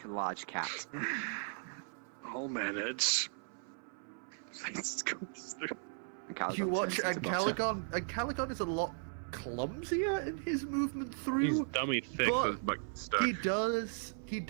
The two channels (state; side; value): silent; left; 53 dB below the other